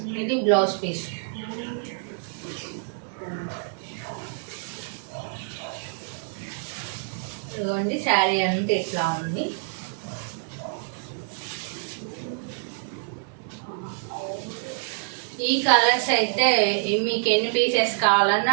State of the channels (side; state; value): left; silent; 61 dB below the other